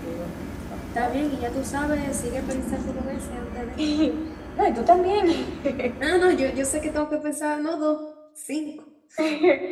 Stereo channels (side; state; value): both; identical; correlation 1.00